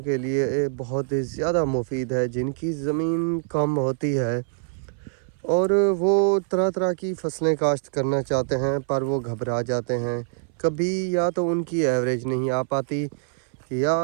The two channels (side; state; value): left; silent; 59 dB below the other